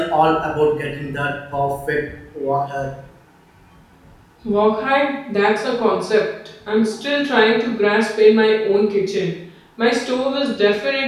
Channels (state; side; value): identical; both; correlation 1.00